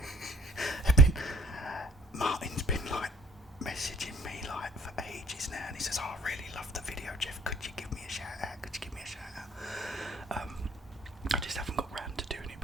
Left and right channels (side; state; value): both; normal; correlation 0.58